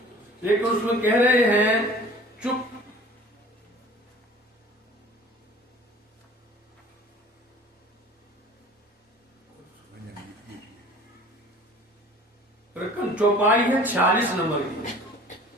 लेकिन उसमें कह रहे हैं चुप चौपाई है 46 नंबर की।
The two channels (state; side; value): normal; both; correlation 0.47